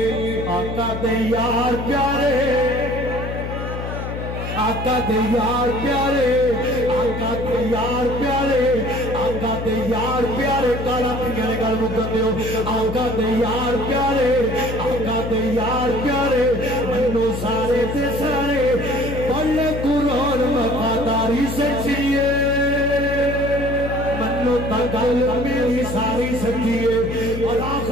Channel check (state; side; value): noise; left; hum, 6 dB below the sound